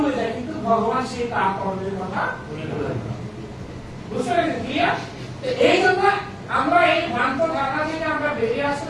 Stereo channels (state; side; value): identical; both; correlation 1.00